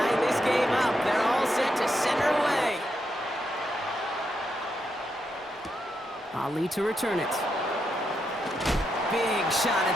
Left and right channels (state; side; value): normal; both; correlation 0.82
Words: this game up, they're all set to send her away. Ali to return it. Big shot